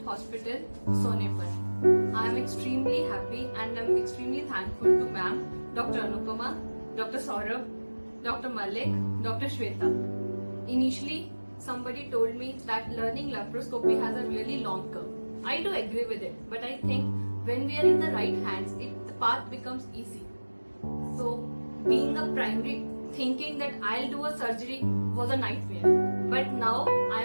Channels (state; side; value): inverted; both; correlation -1.00